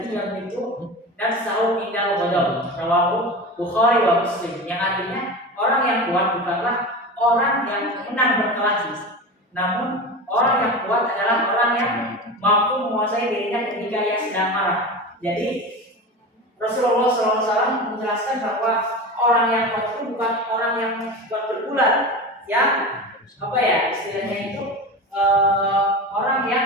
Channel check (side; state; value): both; normal; correlation 0.27